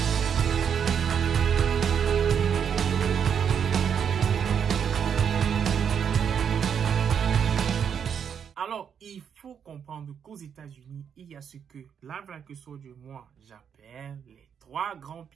Alors, il faut comprendre qu'aux États-Unis, il y a ce que la Black Soldier, moi, j'appelle les trois grands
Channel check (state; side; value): quieter; left; 7.7 dB